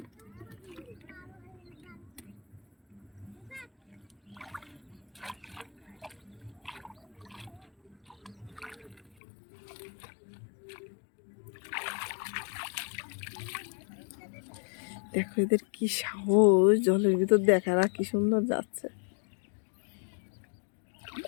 দেখো এদের কি সাহস, জলের ভিতর দেখার কি সুন্দর যাচ্ছে।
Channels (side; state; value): right; drops out; at 9.0 s